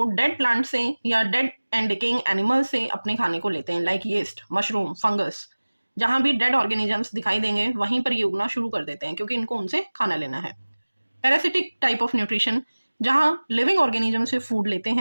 डेड प्लांट से या डेड एंड डिकेइंग एनिमल से अपने खाने को लेते हैं, लाइक यीस्ट, मशरूम, फंगस। जहाँ भी डेड ऑर्गेनिजम्स दिखाई देंगे वहीं पर ये उगना शुरू कर देते हैं, क्योंकि इनको उनसे खाना लेना है। पैरासिटिक टाइप ऑफ न्यूट्रिशन, जहाँ लिविंग ऑर्गेनिजम से फूड लेते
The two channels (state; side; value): inverted; both; correlation -1.00